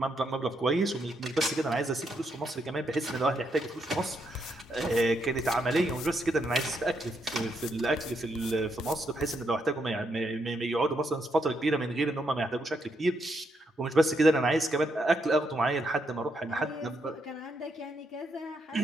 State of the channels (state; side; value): normal; both; correlation 0.78